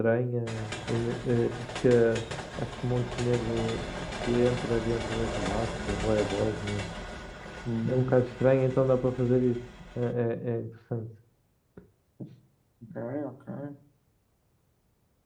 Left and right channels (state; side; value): identical; both; correlation 1.00